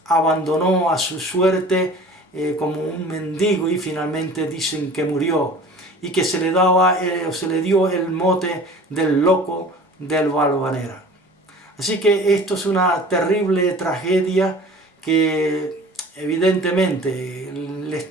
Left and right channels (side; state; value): both; normal; correlation 0.44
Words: abandonó a su suerte como un mendigo, y finalmente dicen que murió, y que se le dio el mote del loco del Valvanera. Así que esto es una terrible tragedia que evidentemente les